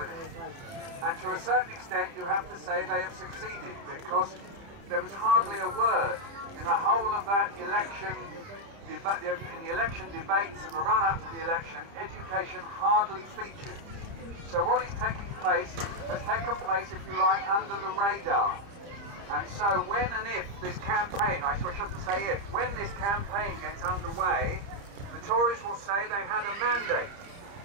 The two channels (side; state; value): left; late; 30 ms